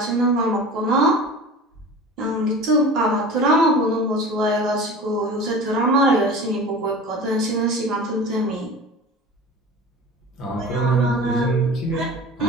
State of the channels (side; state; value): both; normal; correlation 0.36